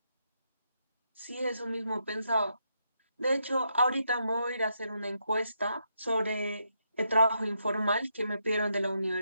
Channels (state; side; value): inverted; both; correlation -0.80